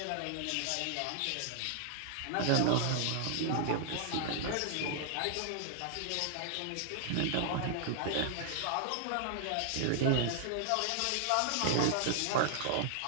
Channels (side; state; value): both; different; correlation -0.01